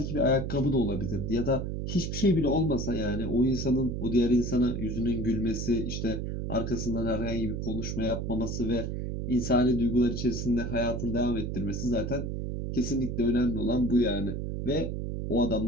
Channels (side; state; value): right; noise; hum, 3 dB below the sound